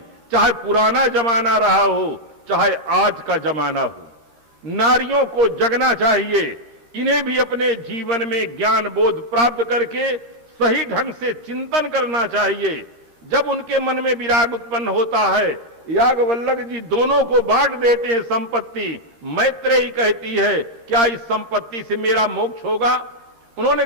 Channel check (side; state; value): left; late; 13 ms